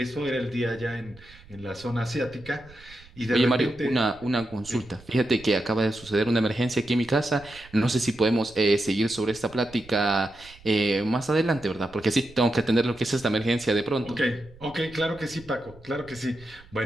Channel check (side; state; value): right; noise; rumble, 23 dB below the sound